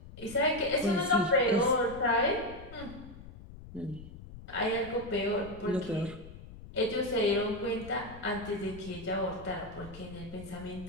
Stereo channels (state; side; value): noise; left; rumble, 15 dB below the sound